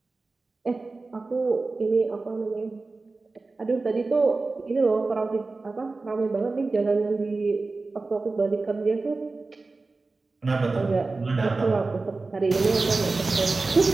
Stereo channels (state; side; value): quieter; left; 3.7 dB